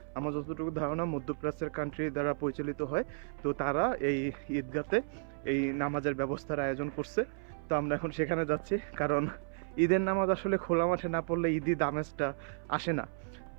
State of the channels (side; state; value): left; silent; 56 dB below the other